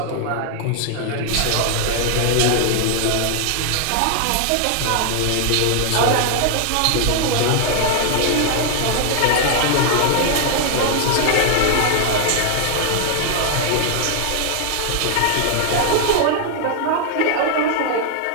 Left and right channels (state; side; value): different; both; correlation 0.00